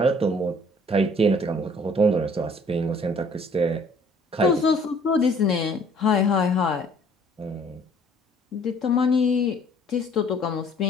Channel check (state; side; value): normal; both; correlation 0.57